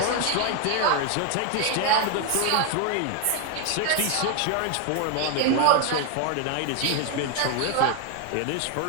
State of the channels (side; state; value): both; different; correlation 0.00